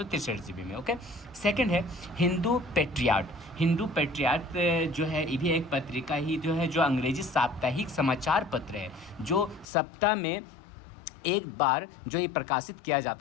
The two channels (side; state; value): right; drops out; at 9.7 s